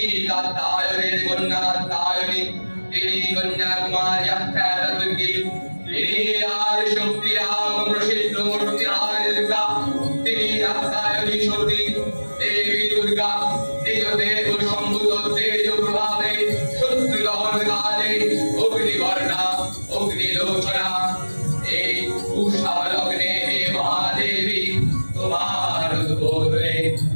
কাত্যায়নের কন্যা কাত্যায়নী তিনি কন্যাকুমারী আখ্যাতা দুর্গী তিনি আদি শক্তি রাম প্রসিদ্ধ মূর্তি আদি দুর্গা তিনি আখ্যায়নী সতী দেবী দুর্গা নিজ দেহ সম্ভূত তেজ প্রভাবে শত্রু দহন কালে অগ্নিবর্ণা অগ্নিলোচনা এই উষা লগ্নে হে মহাদেবী তোমার উদ্বোধনে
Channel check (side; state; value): both; inverted; correlation -1.00